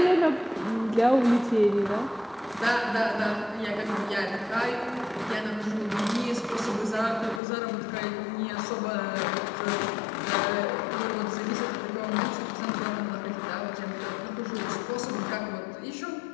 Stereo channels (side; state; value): right; drops out; at 7.4 s